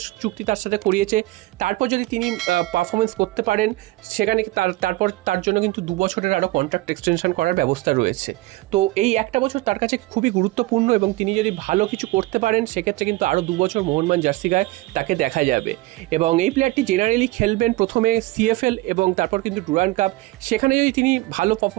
চুক্তি তার সাথে করিয়েছে। তারপর যদি তিনি পারফরমেন্স করতে পারেন সেখানে তারপর তার জন্য কিন্তু 2 বছরের আরও কন্ট্রাক্ট এক্সটেনশন করার ব্যবস্থা রয়েছে। তো এই 1টা বছর তার কাছে খুবই গুরুত্বপূর্ণ এবং তিনি যদি ভালো কিছু করতে পারেন সেক্ষেত্রে কিন্তু আরও 2 বছর মোহনবাগান জার্সি গায়ে তাকে দেখা যাবে। এবং এই প্লেয়ারটি জেনারেলি খেলবেন প্রথমে সিএফএল এবং তারপর কিন্তু ডুরান্ড কাপ। সেখানে যদি তিনি ভালো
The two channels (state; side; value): quieter; left; 19.3 dB